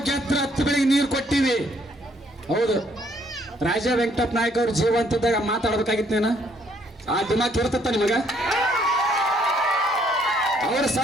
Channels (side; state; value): both; normal; correlation 0.67